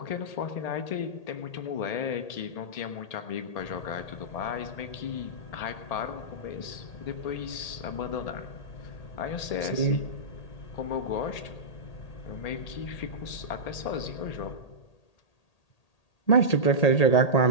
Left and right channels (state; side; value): late; right; 1.8 ms